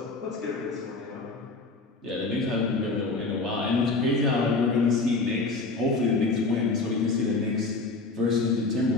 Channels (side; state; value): right; quieter; 3.6 dB